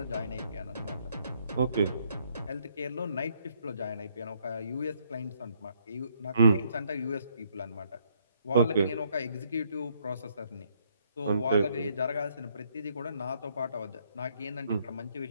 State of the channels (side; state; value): both; inverted; correlation -0.70